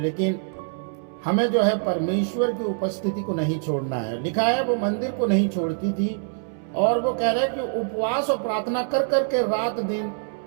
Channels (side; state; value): left; silent; 62 dB below the other